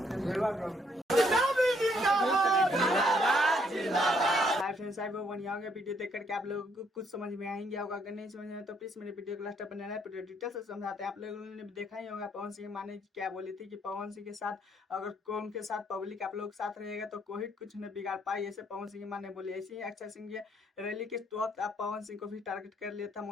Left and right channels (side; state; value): both; normal; correlation 0.69